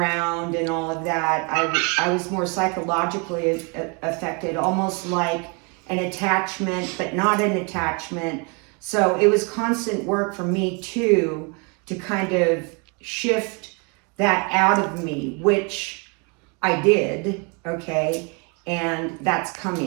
and all of that. I was more psychologically affected, almost like an attachment, but not an attachment. So it was constant work for me too, to kind of shift that out of me, which I did, okay, and that's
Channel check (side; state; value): left; quieter; 32.1 dB